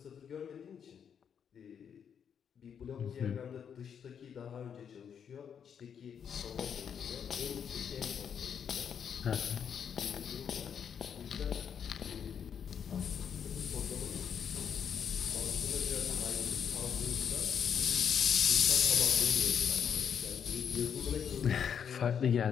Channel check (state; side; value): quieter; right; 7.8 dB